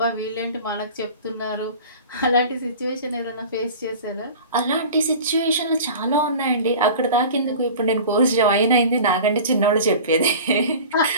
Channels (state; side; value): inverted; both; correlation -0.38